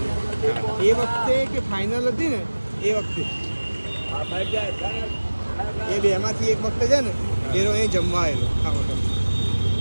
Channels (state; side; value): inverted; both; correlation -1.00